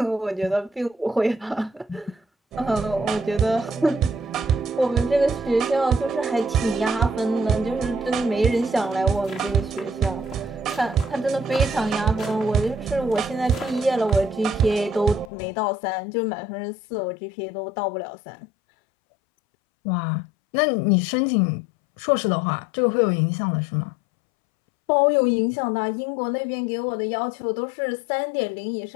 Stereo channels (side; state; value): right; drops out; at 15.3 s